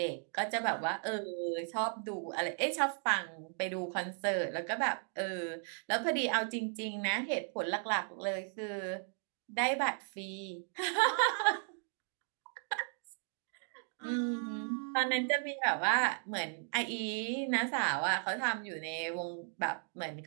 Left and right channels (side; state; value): left; silent; 54 dB below the other